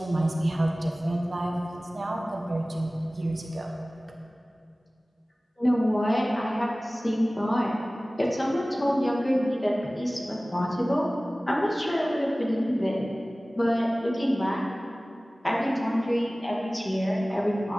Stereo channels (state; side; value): normal; both; correlation 0.98